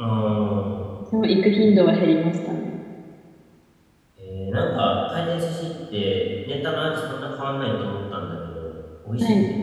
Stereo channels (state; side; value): identical; both; correlation 1.00